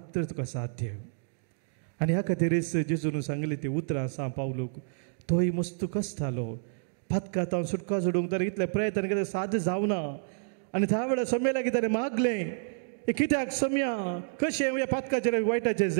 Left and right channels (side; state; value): left; silent; digital silence